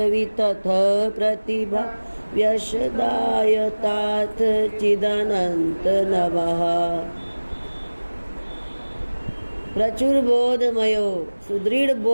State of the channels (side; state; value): both; inverted; correlation -1.00